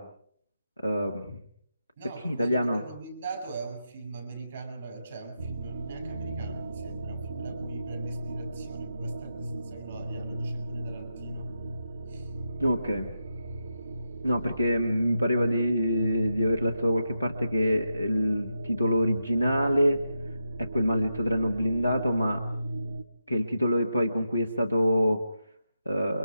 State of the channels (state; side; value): inverted; both; correlation -0.87